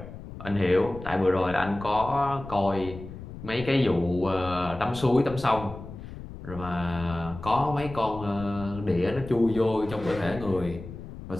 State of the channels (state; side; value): noise; left; rumble, 12 dB below the sound